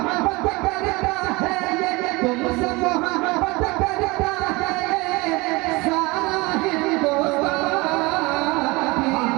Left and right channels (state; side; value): quieter; left; 24.0 dB